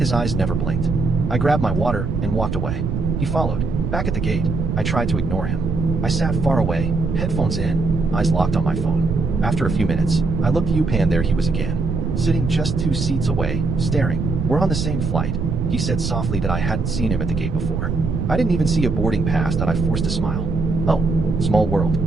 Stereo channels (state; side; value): noise; right; rumble, 2 dB below the sound